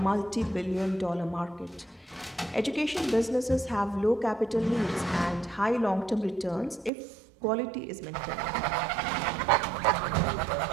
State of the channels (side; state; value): left; drops out; at 6.9 s